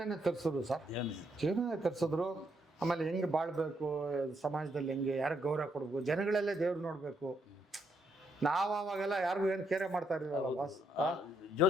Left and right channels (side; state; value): both; normal; correlation 0.76